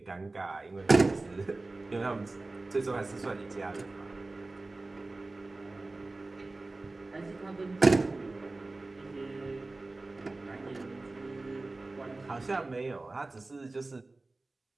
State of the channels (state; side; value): quieter; left; 3.2 dB